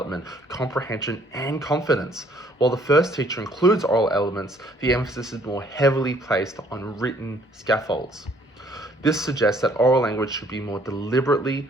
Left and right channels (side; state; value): both; normal; correlation 0.62